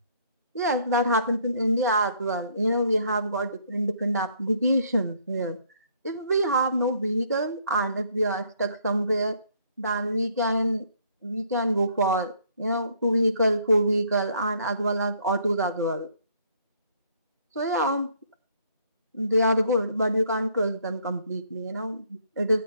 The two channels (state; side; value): inverted; both; correlation -0.65